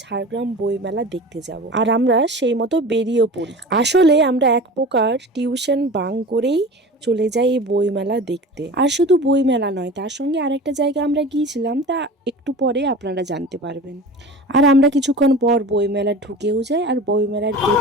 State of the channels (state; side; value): normal; both; correlation 0.36